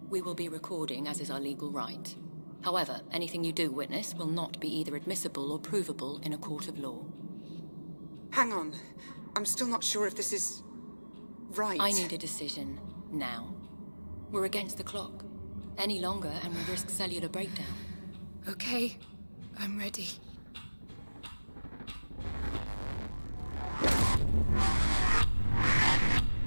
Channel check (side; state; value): both; inverted; correlation -1.00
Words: we will be recording as is our legal right. However, anything you do witness will not be either admissible or provable in a court of law. Hang on. I'm still not sure if this is... right. I need a decision now. We're against the clock. Any longer and we risk cellular breakdown. Okay, I'm ready.